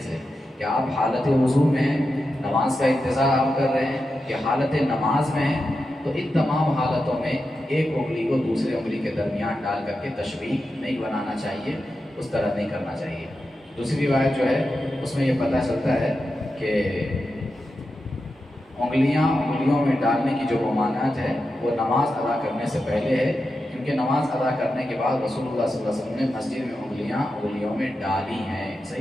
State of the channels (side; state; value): both; normal; correlation 0.89